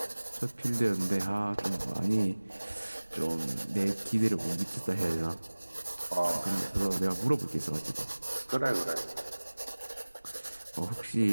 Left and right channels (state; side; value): inverted; both; correlation -1.00